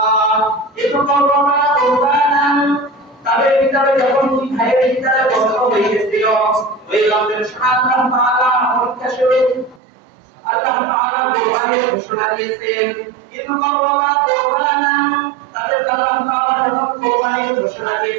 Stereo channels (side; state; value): left; drops out; at 9.8 s